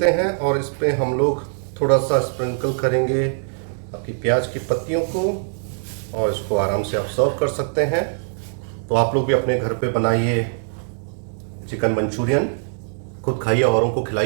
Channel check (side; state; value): left; silent; digital silence